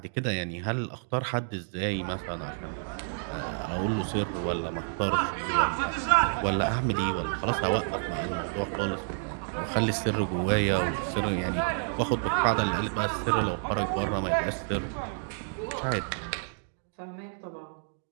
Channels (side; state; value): left; silent; digital silence